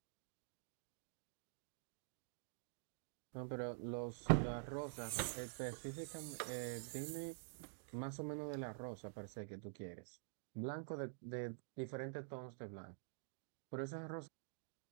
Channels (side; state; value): left; silent; digital silence